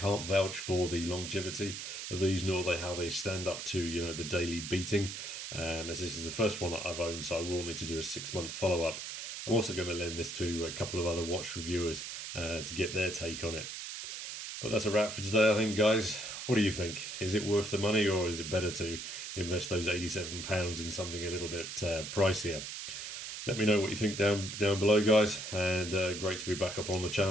vouch for the longevity of these, nor how they stand up to the daily beating, as this is the first one that I've owned, so I will need to do a 6-month follow-up. I'm also going to lend this to a couple of other watch reviewers to get their take on it. But that's a wrap for today, I think, guys. What do you think? Is it worth the money, or is it better to invest those £87 in something a little bit pricier? Let me know what you think down below, guys. And great to be back up on the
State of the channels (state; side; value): noise; right; hiss, 7 dB below the sound